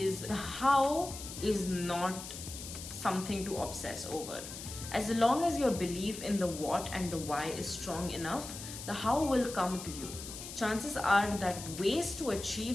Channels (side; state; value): left; noise; hiss, 10 dB below the sound